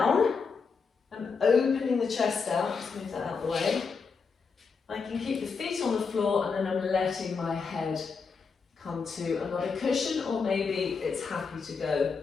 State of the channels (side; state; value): right; quieter; 5.2 dB